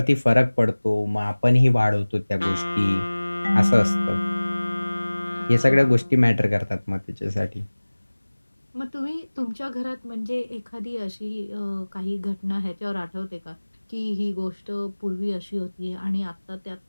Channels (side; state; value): both; inverted; correlation -1.00